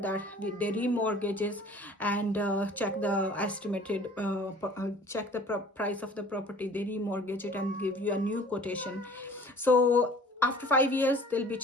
they remortgages and check the estimated check the price of the property. They remortgage it and give you a new quotation. So after 5 years, they'll be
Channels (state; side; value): normal; both; correlation 0.49